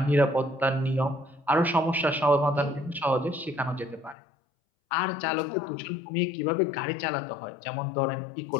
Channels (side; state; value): right; drops out; at 4.2 s